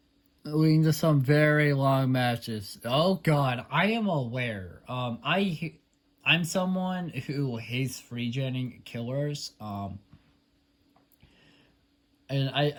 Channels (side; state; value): both; identical; correlation 1.00